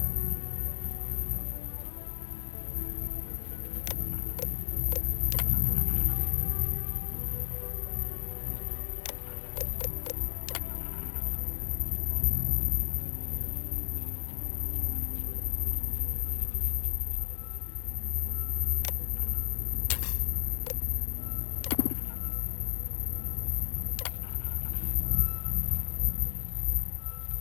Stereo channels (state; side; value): silent; right; digital silence